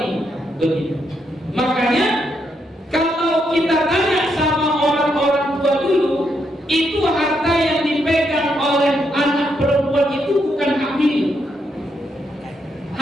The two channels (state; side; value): normal; both; correlation 0.78